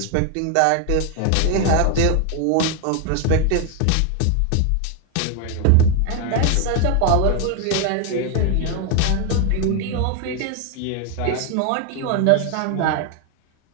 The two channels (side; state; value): both; different; correlation 0.01